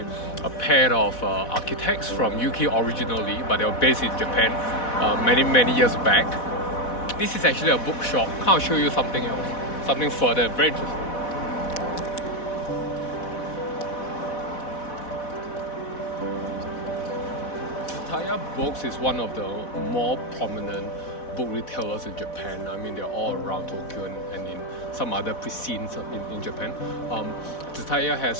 a pair of architects from UK originally, but they were based in Japan many years back. This is actually a bookshop. I'll show you something else, something further, very interesting. Tsutaya Books is one of the more prominent book retailers in Japan. I mean, they're all around Tokyo and in some other precincts in Japan. Tsutaya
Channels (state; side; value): late; right; 4.1 ms